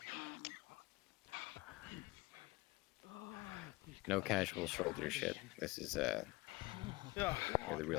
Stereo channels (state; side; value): quieter; right; 22.4 dB